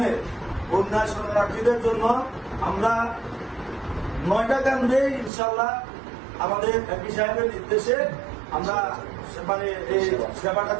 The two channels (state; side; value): drops out; left; at 5.3 s